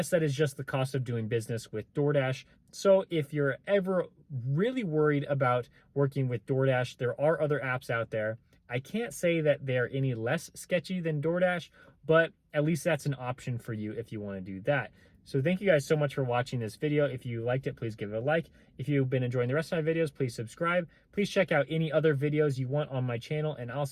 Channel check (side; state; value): both; identical; correlation 1.00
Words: that is just the cost of doing business with DoorDash. So if you're ever really worried about working with DoorDash, there are other apps out there. I can't say that they're any less sketchy than DoorDash, but at least that's an option for you if you want to do that. So thank you guys so much for watching this video. If you liked it, please give it a like. If you've been enjoying the rest of my videos, please subscribe. Please check out any other videos you want on my channel, and I'll